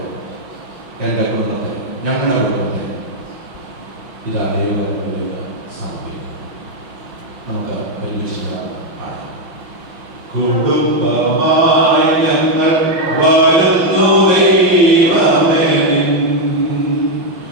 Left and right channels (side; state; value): left; late; 5.9 ms